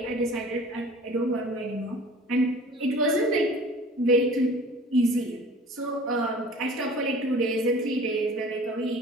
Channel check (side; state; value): both; normal; correlation 0.45